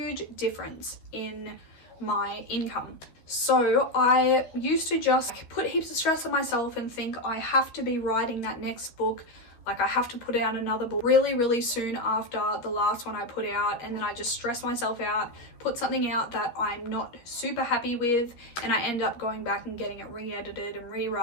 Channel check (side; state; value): right; late; 13 ms